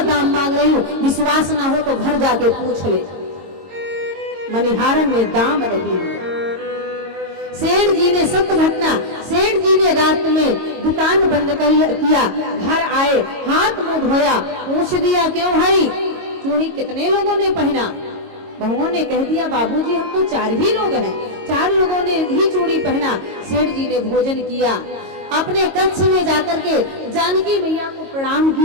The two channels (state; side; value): late; left; 22 ms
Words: दाम मांग रही हूँ, विश्वास ना हो तो घर जाके पूछ ले। मनिहारन ने दाम नहीं लिया। सेठ जी ने सत्य घटना, सेठ जी ने रात में दुकान बंद किया, घर आए, हाथ मुंह धोया, पूछ दिया क्यों भाई चूड़ी कितने लोगों ने पहना? बहुओं ने कह दिया बाबूजी हम तो 4 ही लोग हैं, 4 लोगों ने ही चूड़ी पहना। सेठ जी ने भोजन किया, अपने कक्ष में जाकर के जानकी मैया को प्रणाम